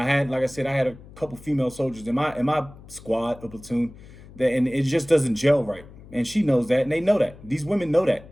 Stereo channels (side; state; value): left; noise; hum, 20 dB below the sound